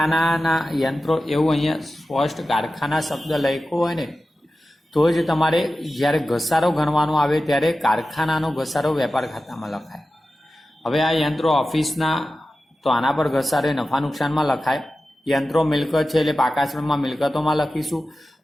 યંત્રો એવું અહીંયા સ્પષ્ટ કારખાના શબ્દ લખ્યો હોય ને તો જ તમારે જ્યારે ઘસારો ગણવાનો આવે ત્યારે કારખાનાનો ઘસારો વેપાર ખાતામાં લખાય. હવે આ યંત્રો ઓફિસના, તો આના પર ઘસારો નફા નુકસાનમાં લખાય. યંત્રો મિલકત છે એટલે પાકાશ્રમમાં મિલકતોમાં લખીશું.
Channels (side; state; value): both; normal; correlation 0.94